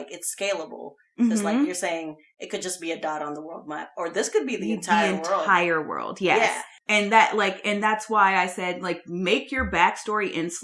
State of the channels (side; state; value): both; identical; correlation 1.00